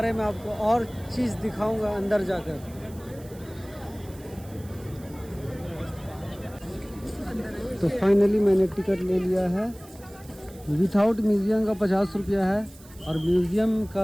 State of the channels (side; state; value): right; noise; hiss, 23 dB below the sound